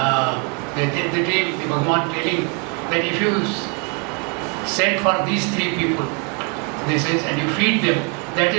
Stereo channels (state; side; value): quieter; left; 35.1 dB